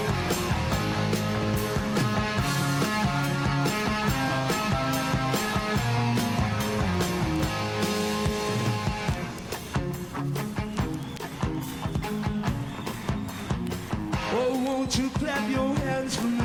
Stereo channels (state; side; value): identical; both; correlation 1.00